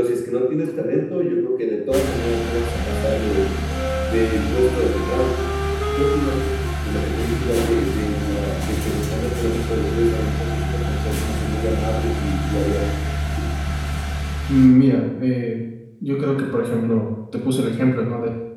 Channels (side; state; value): both; identical; correlation 1.00